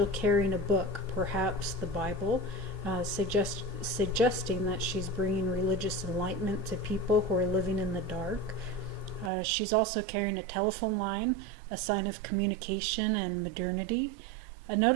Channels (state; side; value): drops out; left; at 9.3 s